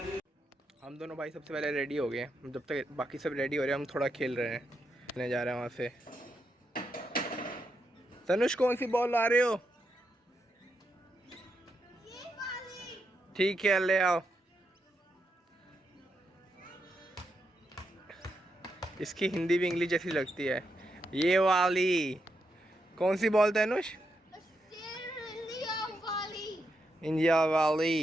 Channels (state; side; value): normal; both; correlation 0.83